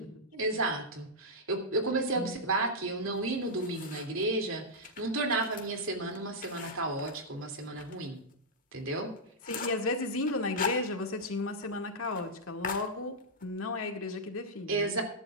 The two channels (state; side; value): normal; both; correlation -0.08